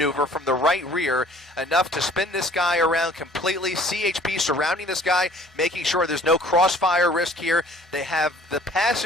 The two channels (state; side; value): normal; both; correlation 0.53